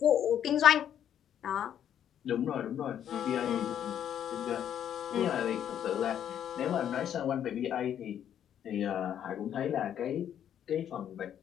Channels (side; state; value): right; quieter; 9.8 dB